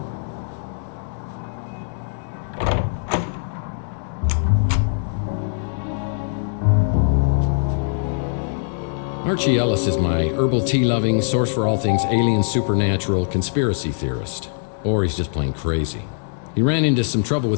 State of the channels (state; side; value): silent; right; digital silence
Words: Archie Ellis is my herbal tea-loving, source for all things alien, supernatural, conspiracy theorist. Or he's just plain crazy. He ran into some trouble